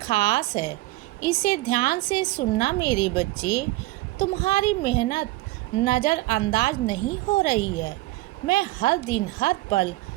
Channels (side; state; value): left; quieter; 19.1 dB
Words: है। इसे ध्यान से सुनना मेरे बच्चे। तुम्हारी मेहनत नज़रअंदाज नहीं हो रही है। मैं हर दिन हर पल